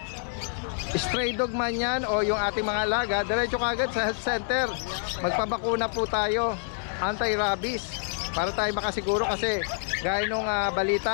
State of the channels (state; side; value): silent; right; digital silence